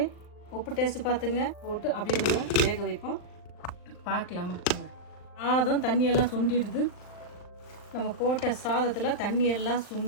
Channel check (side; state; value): right; late; 39 ms